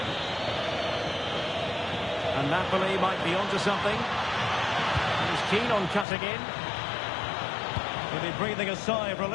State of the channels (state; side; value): drops out; right; at 6.1 s